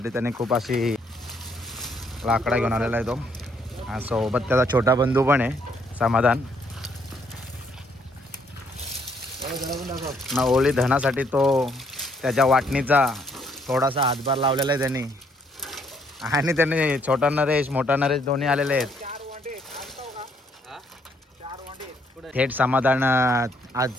त्याने खूप अशी लाकडा घेऊन आलेला आहे तो. सोबत त्याचा छोटा बंधू पण आहे समाधान. ना होळी धनासाठी तो त्याच्या वाटणीचा थोडासा हातभार लावलेला आहे त्यांनी. आणि त्यांनी छोटा नरेश मोठा नरेश दोन्ही आलेले आहेत. थेट समाधान आज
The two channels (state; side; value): normal; both; correlation 0.69